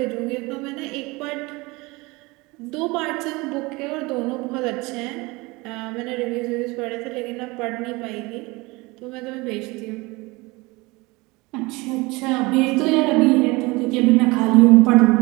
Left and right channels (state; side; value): quieter; left; 23.9 dB